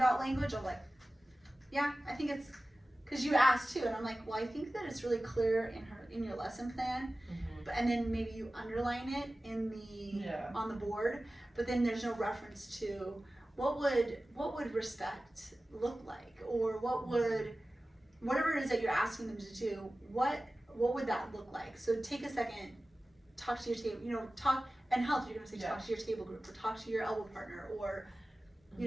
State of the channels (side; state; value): both; normal; correlation 0.96